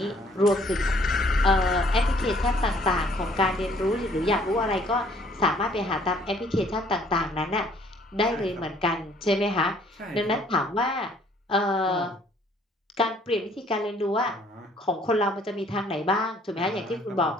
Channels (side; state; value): both; normal; correlation 0.61